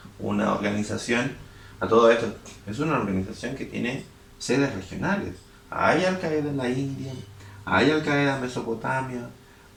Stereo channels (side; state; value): both; identical; correlation 1.00